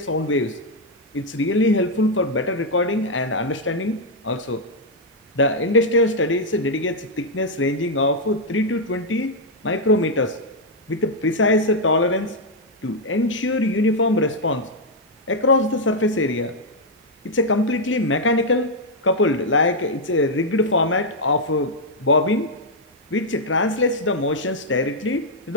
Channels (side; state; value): both; normal; correlation -0.02